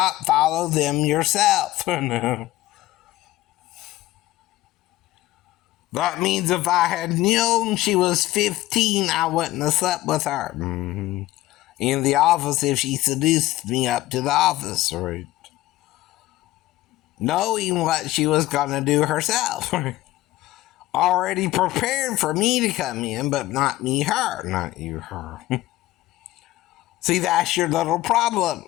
follow them yourself. No. That means if I had known she was 15, I wouldn't have slept with her. Mm-hmm. In the office if she seduced me up to the office, right? Knowing what she was going to do herself. Already prepared for me to come in, but not me, her. Not you, her. See, that's your little problem.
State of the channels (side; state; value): right; quieter; 16.4 dB